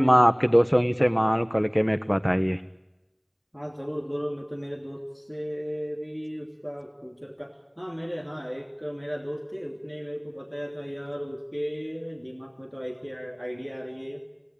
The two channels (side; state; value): both; identical; correlation 1.00